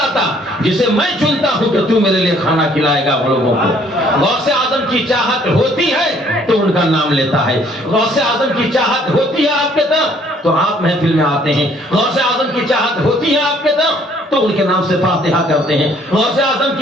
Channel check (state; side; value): normal; both; correlation 0.61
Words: جسے میں چنتا ہوں کہ تو میرے لیے کھانا کھلائے گا لوگوں کو۔ غوث اعظم کی چاہت ہوتی ہے تو ان کا نام لیتا ہے، غوث اعظم کی چاہت ہوتی ہے آپ کے طرف تو آپ محفل میں آتے ہیں، غوث اعظم کی چاہت ہوتی ہے آپ کے طرف تو ان کے نام سے فاتحہ کرتے ہیں، غوث اعظم